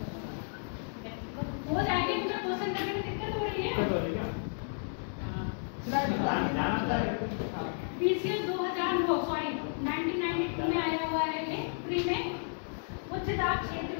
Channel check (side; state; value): right; silent; digital silence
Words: हो जाएगी, मुझे क्वेश्चन करने में दिक्कत हो रही है। पीछे 1992 में आया हुआ है ये प्री में, उच्च दाब क्षेत्र